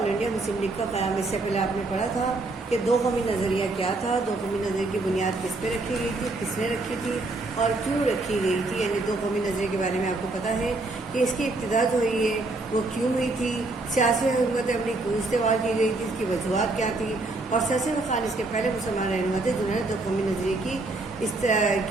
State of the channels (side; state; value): left; quieter; 3.1 dB